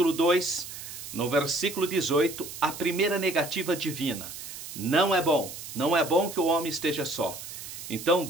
2, no versículo 18, a primeira negativa divina. Não é bom que o homem esteja só. Então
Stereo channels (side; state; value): right; noise; hiss, 11 dB below the sound